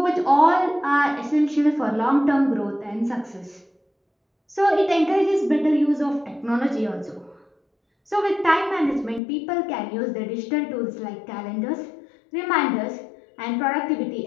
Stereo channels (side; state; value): right; drops out; at 9.2 s